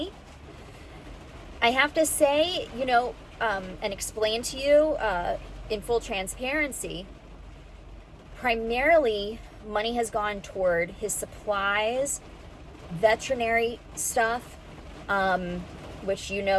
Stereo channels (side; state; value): both; identical; correlation 1.00